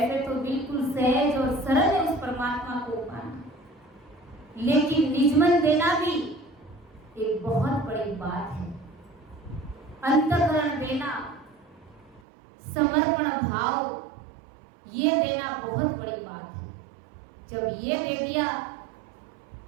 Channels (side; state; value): left; drops out; at 12.2 s